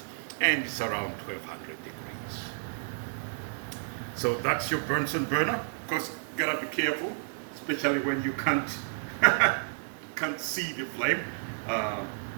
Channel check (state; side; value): silent; left; digital silence